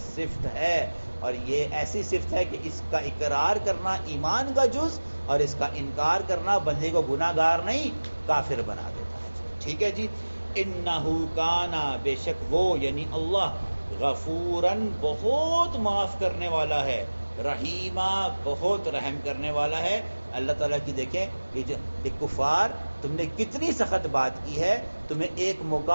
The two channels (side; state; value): both; inverted; correlation -1.00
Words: صفت ہے، اور یہ ایسی صفت ہے کہ اس کا اقرار کرنا ایمان کا جز، اور اس کا انکار کرنا بندے کو گناہ گار نہیں کافر بنا دیتا ہے۔ ٹھیک ہے جی۔ انہ کانا، بے شک وہ یعنی اللہ، غفوراً، بہت معاف کرنے والا ہے، رحیمہ، بہت رحم کرنے والا ہے۔ اللہ تعالیٰ کی دیکھیں یہ کفار، تم نے کتنی سخت بات کی ہے، تمہیں ایک